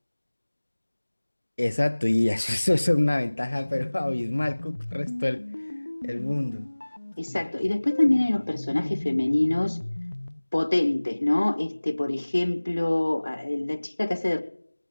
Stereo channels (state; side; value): inverted; both; correlation -1.00